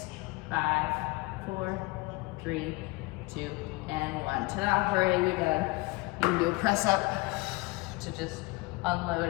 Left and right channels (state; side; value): quieter; right; 23.9 dB